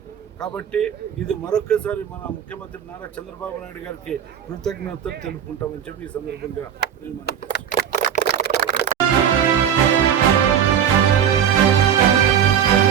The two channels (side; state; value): left; quieter; 8.8 dB